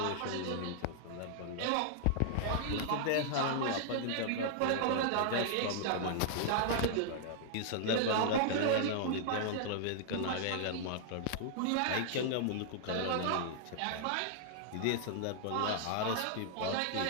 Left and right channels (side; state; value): both; different; correlation -0.01